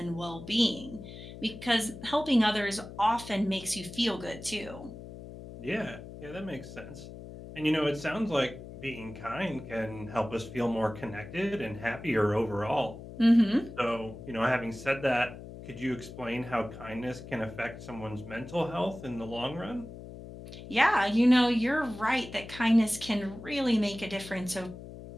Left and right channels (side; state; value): left; noise; hum, 13 dB below the sound